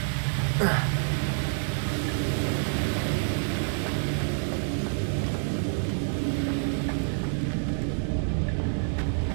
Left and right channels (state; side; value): silent; left; digital silence